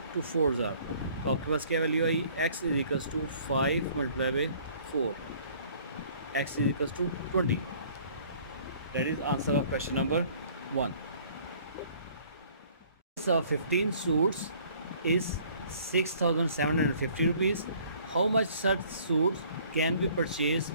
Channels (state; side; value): inverted; both; correlation -0.55